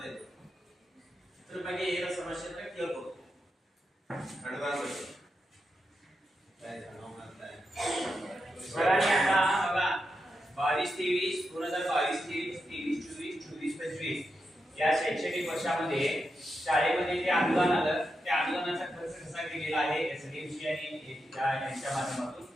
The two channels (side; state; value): both; normal; correlation 0.87